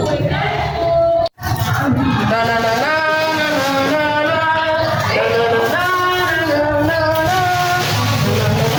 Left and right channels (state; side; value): identical; both; correlation 1.00